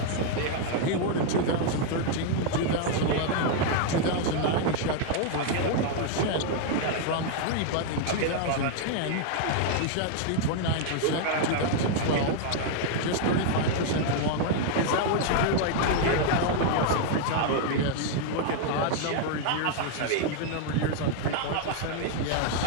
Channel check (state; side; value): different; both; correlation 0.00